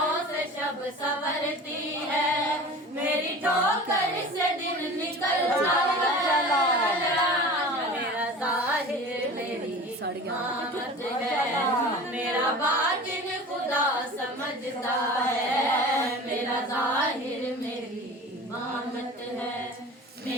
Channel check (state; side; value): normal; both; correlation 0.38